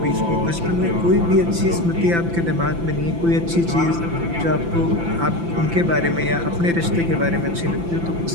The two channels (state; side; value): late; left; 5.9 ms